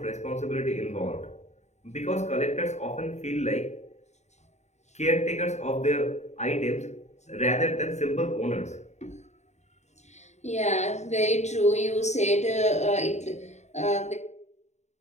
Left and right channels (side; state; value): right; late; 0.33 ms